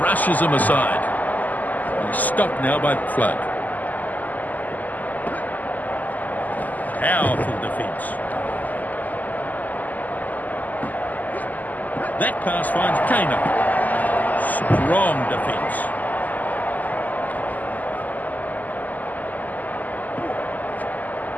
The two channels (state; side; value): late; right; 0.081 ms